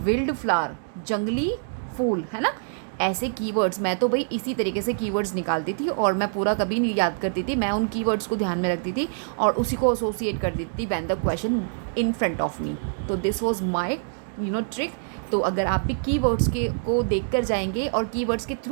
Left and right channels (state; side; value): silent; left; digital silence